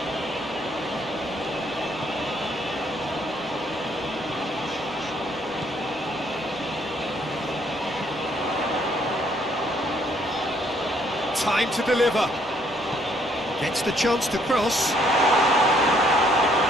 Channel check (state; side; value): normal; both; correlation 0.67